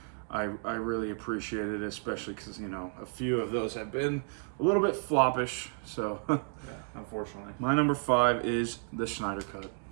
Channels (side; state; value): left; silent; 56 dB below the other